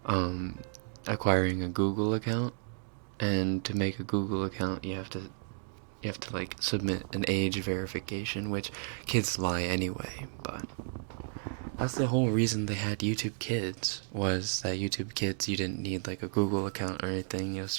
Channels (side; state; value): left; silent; 56 dB below the other